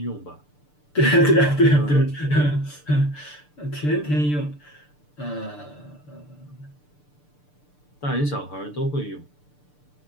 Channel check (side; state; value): right; late; 6.8 ms